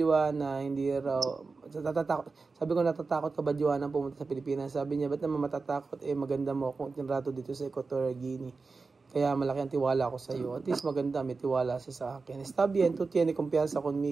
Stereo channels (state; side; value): quieter; left; 4.2 dB